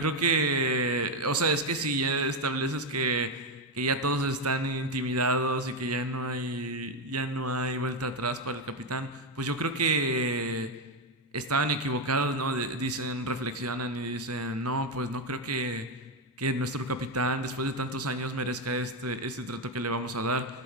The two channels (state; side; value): normal; both; correlation 0.07